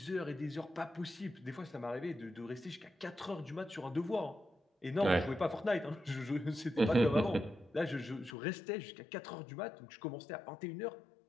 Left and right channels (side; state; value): right; drops out; at 8.3 s